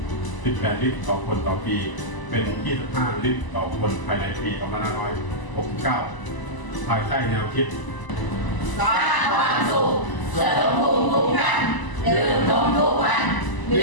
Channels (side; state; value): right; late; 1.0 ms